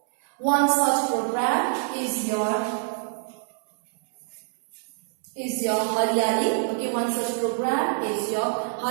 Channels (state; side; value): silent; left; 61 dB below the other